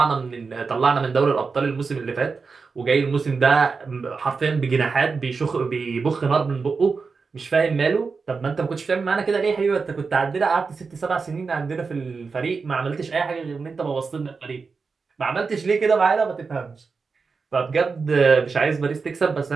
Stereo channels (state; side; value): quieter; left; 4.8 dB